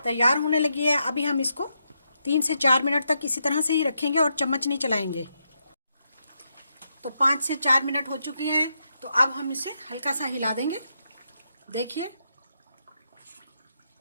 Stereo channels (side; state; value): both; inverted; correlation -0.82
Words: होने लगी है। अभी हम इसको 3 से 4 मिनट तक इसी तरह से ही रखेंगे और चम्मच नहीं चलाएंगे। तो 5 से 4 मिनट हो चुकी हैं। तो अब हम इसे हल्का सा हिला देंगे। देखिए